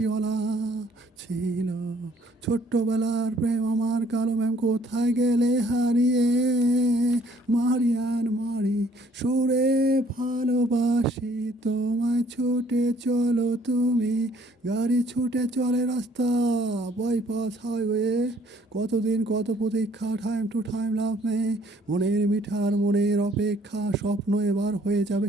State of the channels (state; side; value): normal; both; correlation 0.61